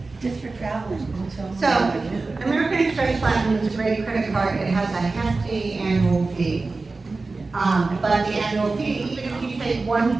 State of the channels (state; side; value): quieter; left; 3.7 dB